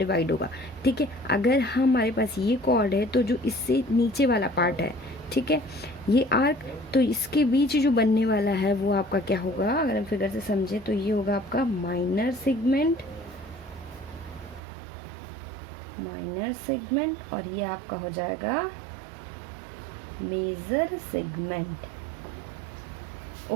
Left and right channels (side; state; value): left; drops out; at 14.6 s